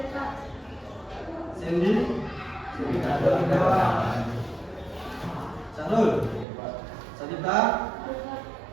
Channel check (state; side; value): drops out; left; at 6.5 s